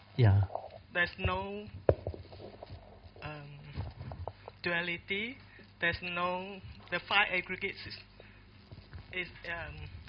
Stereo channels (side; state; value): both; identical; correlation 1.00